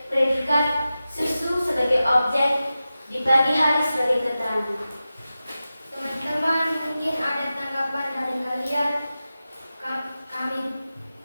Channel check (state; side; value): inverted; both; correlation -0.94